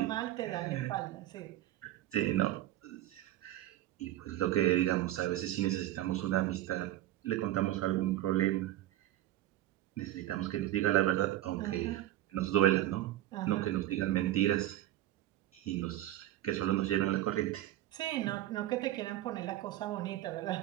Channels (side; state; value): left; quieter; 14.5 dB